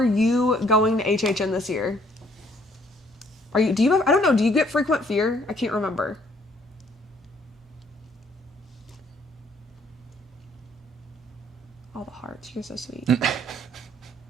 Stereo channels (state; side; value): normal; both; correlation 0.64